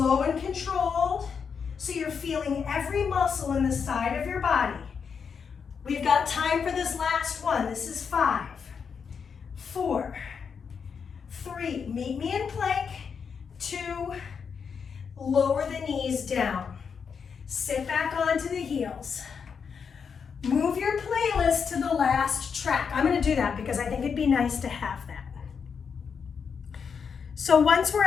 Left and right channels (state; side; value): quieter; right; 6.3 dB